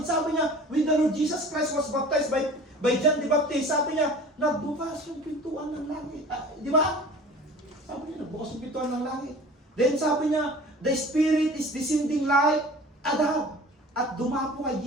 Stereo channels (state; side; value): normal; both; correlation 0.43